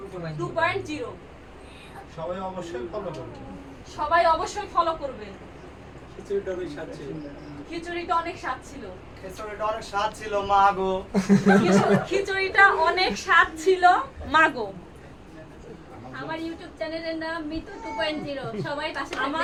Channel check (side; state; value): both; identical; correlation 1.00